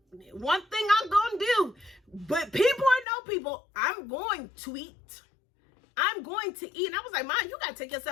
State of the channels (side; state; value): right; drops out; at 3.1 s